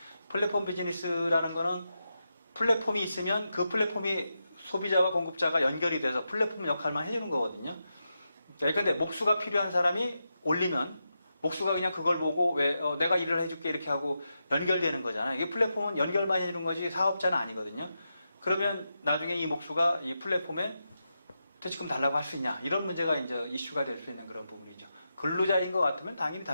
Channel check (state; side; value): inverted; both; correlation -0.88